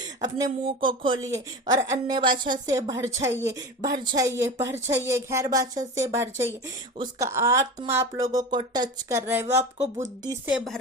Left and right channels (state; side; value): normal; both; correlation 0.29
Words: अपने मुंह को खोलिए और अन्य भाषा से भर जाइए, भर जाइए, भर जाइए, गैर भाषा से भर जाइए। उसका आत्मा आप लोगों को टच कर रहा है, वो आपको बुद्धि से भर